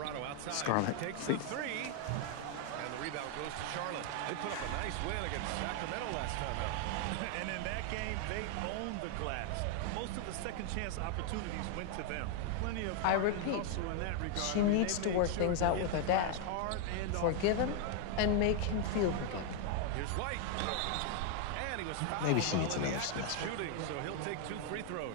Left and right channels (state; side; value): different; both; correlation 0.00